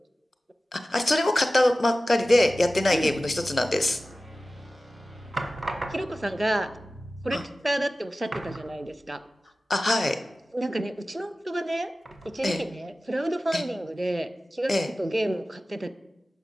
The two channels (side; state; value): both; normal; correlation 0.96